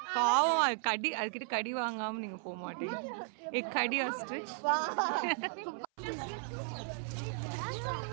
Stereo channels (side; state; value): left; silent; 54 dB below the other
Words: பாவம், அது கடி, அதுக்கிட்ட கடி வாங்காம நீங்க போக மாட்டீங்க. கடி ஆஸ்ட்ரிச்.